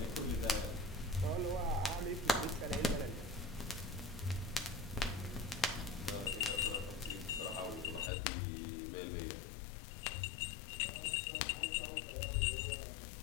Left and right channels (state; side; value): drops out; right; at 8.1 s